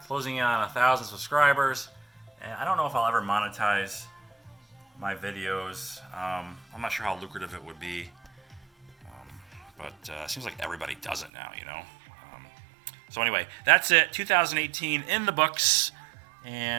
1,000 subscribers, and I don't know if I'll ever monetize my videos. I'm not sure how lucrative it would be. But it seems like everybody does it now, So anyway, that's it. 2018 in the books.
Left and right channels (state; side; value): drops out; left; at 11.3 s